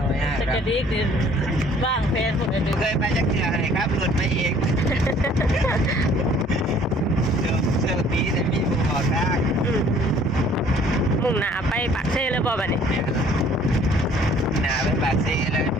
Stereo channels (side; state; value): both; normal; correlation 0.56